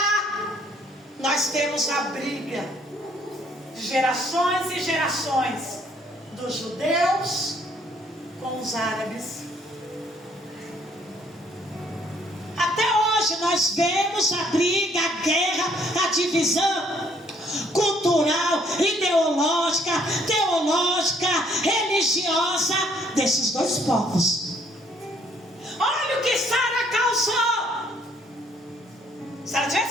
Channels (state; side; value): normal; both; correlation 0.65